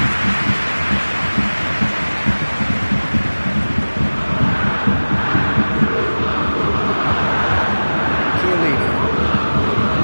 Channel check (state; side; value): inverted; both; correlation -1.00